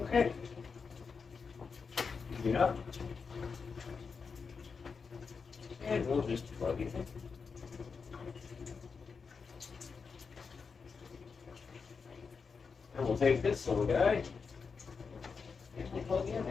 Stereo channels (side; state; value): right; quieter; 5.3 dB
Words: Okay. Yeah. And we'll just plug it in. And we'll take this little guy and we'll plug in